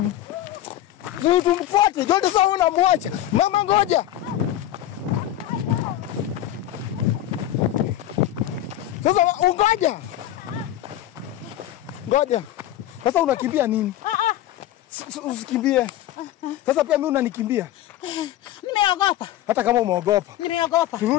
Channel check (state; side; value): quieter; right; 12.9 dB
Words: Ni tumfuate. Jonte sasa unamwacha. Mama ngoja. Sasa ungoja. Ngoja. Sasa unakimbia nini? Usikimbie. Sasa pia mimi unanikimbia. Nimeogopa. Hata kama umeogopa. Nimeogopa.